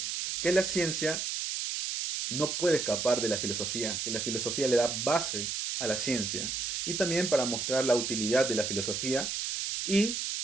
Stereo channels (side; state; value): right; noise; hiss, 2 dB below the sound